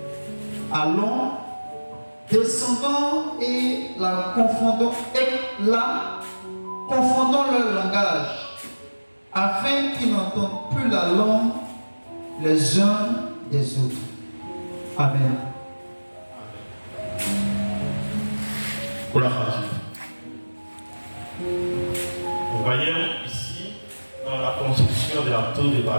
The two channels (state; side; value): inverted; both; correlation -1.00